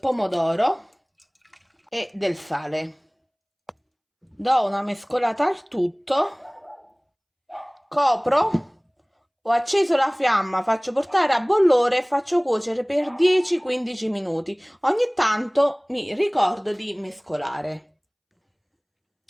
pomodoro e del sale. Do una mescolata al tutto, copro, ho acceso la fiamma, faccio portare a bollore e faccio cuocere per 10-15 minuti. Ogni tanto mi ricordo di mescolare.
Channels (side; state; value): both; identical; correlation 1.00